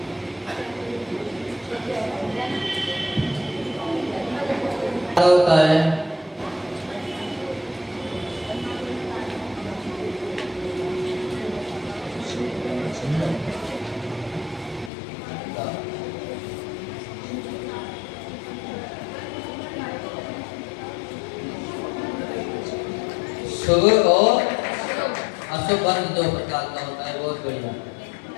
क्या होता है? शुभ और अशुभ अंत दो प्रकार का होता है। बहुत बढ़िया।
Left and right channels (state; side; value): drops out; right; at 14.9 s